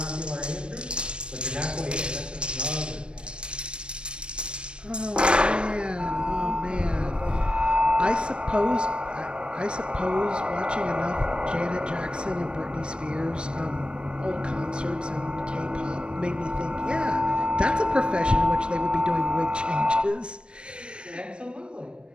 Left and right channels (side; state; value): left; late; 0.056 ms